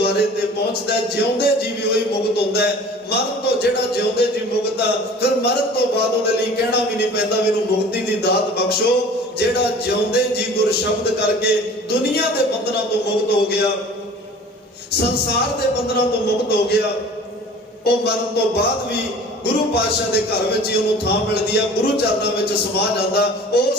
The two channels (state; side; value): normal; both; correlation 0.45